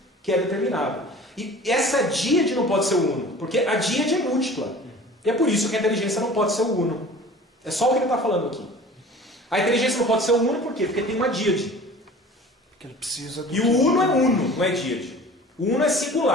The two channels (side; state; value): both; normal; correlation 0.44